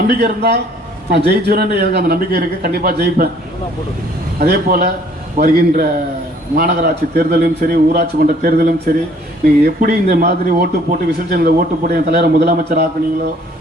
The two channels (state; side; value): normal; both; correlation 0.59